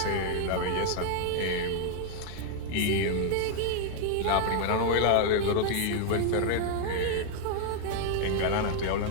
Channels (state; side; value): different; both; correlation 0.00